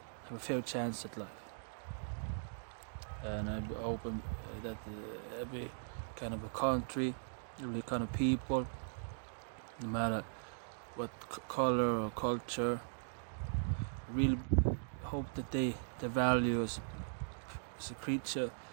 have a fair chance at life. And I'm open that every kind of a country, every kind of people, no matter what color or culture, I really hope that their value as a creature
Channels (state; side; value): silent; left; digital silence